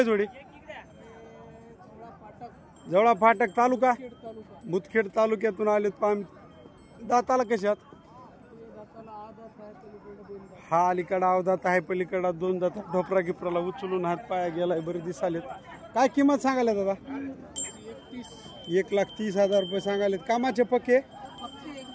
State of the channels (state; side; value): identical; both; correlation 1.00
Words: जोडी? जवळा फाटक तालुका मुदखेड तालुक्यातून आलेत पाम। दाताला कशात? हा अलीकडा अवदात आहे, पलीकडा 2 दात ढोपरा गिपराला उचलून हात पाया गेलाय, बरे दिसालेत। काय किंमत सांगायला दादा? 1,30,000 रुपये सांगालेत। कामाचे पक्के?